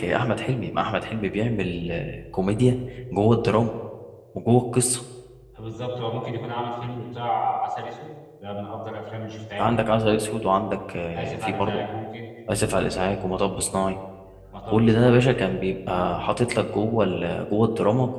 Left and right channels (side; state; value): both; identical; correlation 1.00